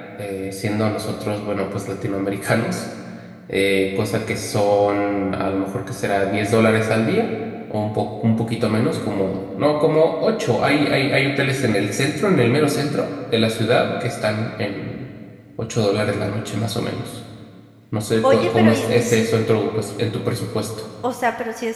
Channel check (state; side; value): identical; both; correlation 1.00